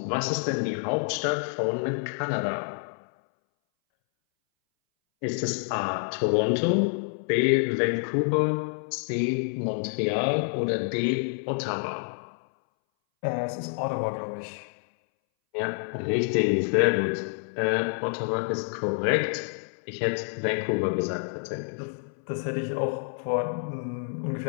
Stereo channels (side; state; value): right; silent; 60 dB below the other